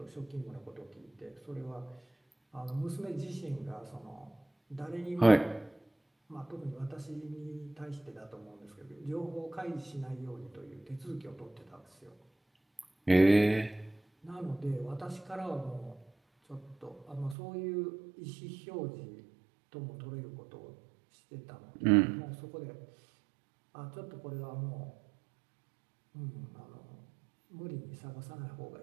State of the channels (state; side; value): drops out; left; at 17.4 s